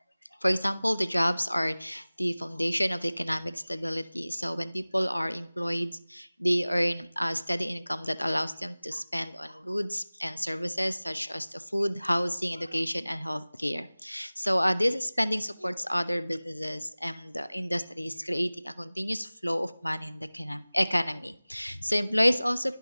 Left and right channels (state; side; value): inverted; both; correlation -0.99